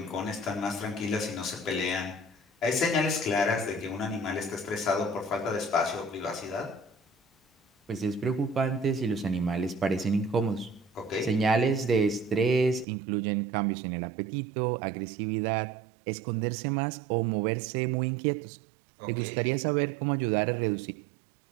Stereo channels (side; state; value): left; drops out; at 12.9 s